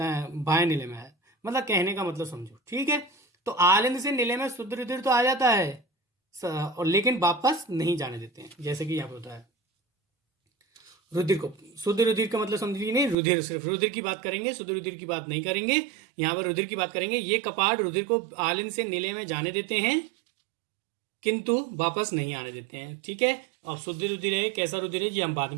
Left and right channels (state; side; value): drops out; left; at 13.2 s